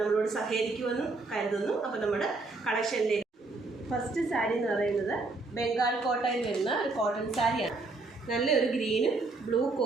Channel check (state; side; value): quieter; left; 3.5 dB